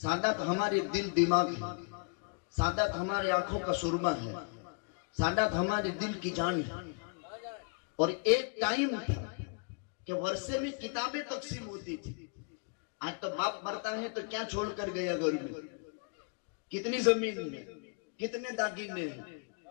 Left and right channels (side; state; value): right; quieter; 37.2 dB